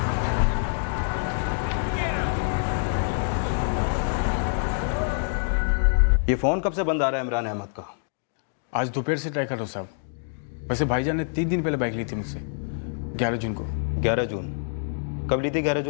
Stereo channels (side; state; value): right; silent; digital silence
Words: ये फ़ोन कब से बंद आ रहा है इमरान अहमद का? आज दोपहर से ट्राई कर रहा साहब। वैसे भाईजान ने 3 दिन पहले बाइक ली थी मुझसे, 11 जून को। 11 जून? कब ली थी 11